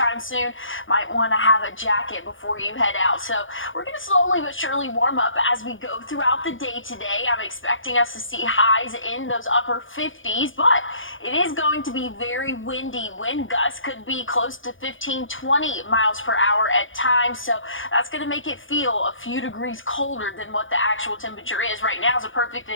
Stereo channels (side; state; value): right; late; 0.57 ms